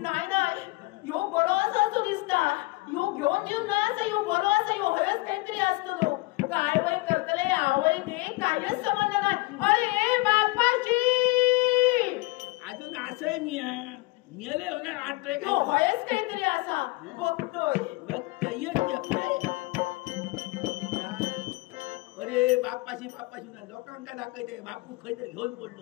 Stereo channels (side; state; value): right; quieter; 22.7 dB